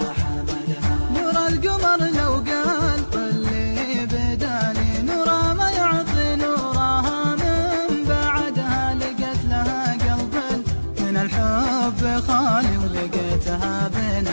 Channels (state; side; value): inverted; both; correlation -1.00